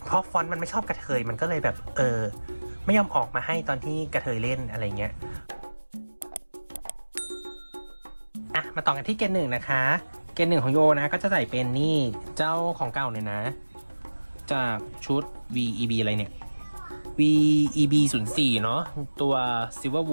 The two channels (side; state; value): both; inverted; correlation -1.00